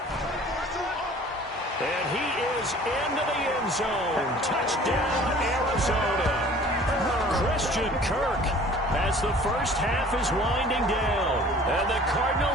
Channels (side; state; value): both; normal; correlation 0.49